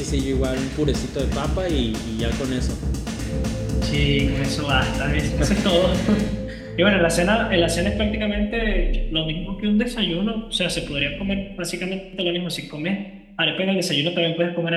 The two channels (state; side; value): identical; both; correlation 1.00